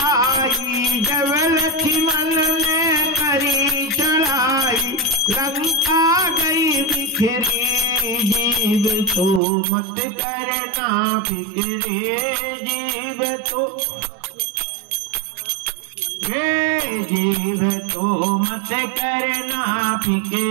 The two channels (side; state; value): left; drops out; at 9.4 s